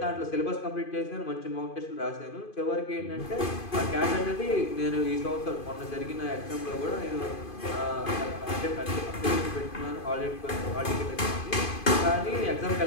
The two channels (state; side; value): late; right; 2.5 ms